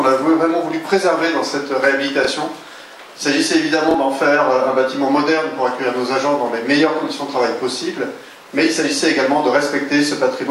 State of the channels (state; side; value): identical; both; correlation 1.00